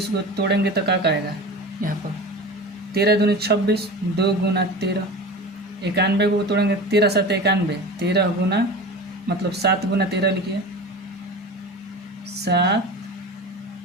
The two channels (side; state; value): both; normal; correlation 0.32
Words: को तोड़ेंगे तो क्या आएगा, यहाँ पर 13 दूनी 26, 2 गुना 13। 91 को तोड़ेंगे, 13 7 91, 13 गुना मतलब 7 गुना 13 लिखिए, 7